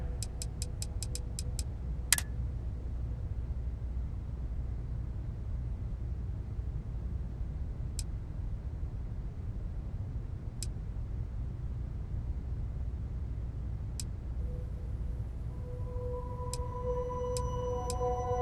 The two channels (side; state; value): both; identical; correlation 1.00